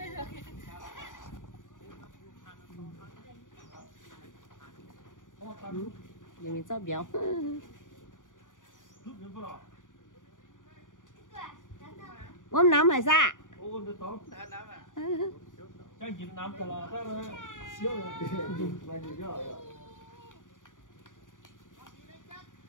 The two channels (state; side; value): late; right; 0.88 ms